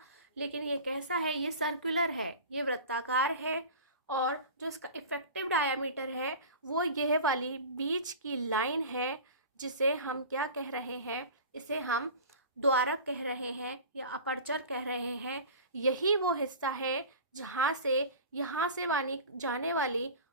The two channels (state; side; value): inverted; both; correlation -0.36